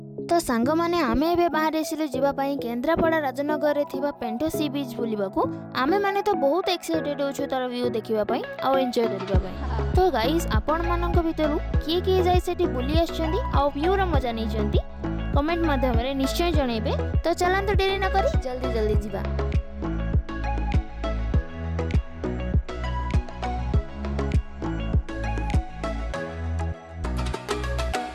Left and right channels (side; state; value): both; identical; correlation 1.00